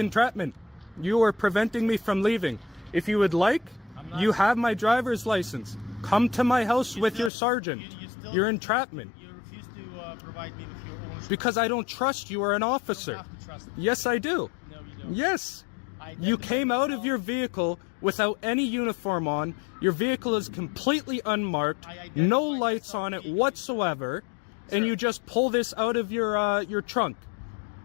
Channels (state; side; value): drops out; right; at 7.3 s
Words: You are preventing me from leaving. If you would like, you have my driver's license. Come to my house with your sergeant. You're entrapment. You refuse to provide me with your ownership. Because I don't trust you are an officer. You don't have to trust me. Yes, I do. No, you don't. Yes. You came out of your vehicle without any uniform on. Your vehicle is completely unmarked, no lights on it whatsoever, and you just pull this out of your trunk.